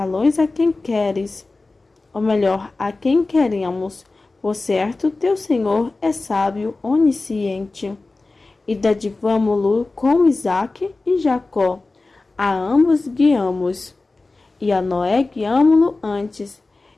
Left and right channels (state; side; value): quieter; right; 3.4 dB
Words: a quem queres, ou melhor, a quem queremos. Por certo, teu Senhor é sábio, onisciente. E dadivamo-lo com Isaque e Jacó. A ambos guiamos. E a Noé guiamo-lo antes,